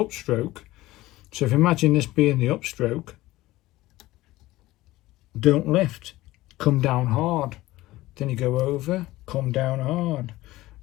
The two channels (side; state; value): right; quieter; 17.6 dB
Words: so if you imagine this being the upstroke, don't lift, come down hard. Then you go over, come down hard.